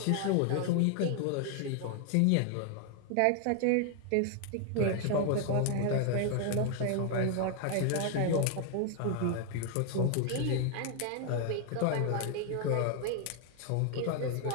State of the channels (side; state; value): both; different; correlation 0.00